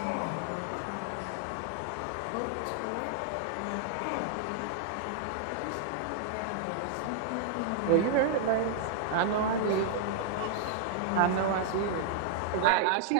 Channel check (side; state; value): both; different; correlation -0.01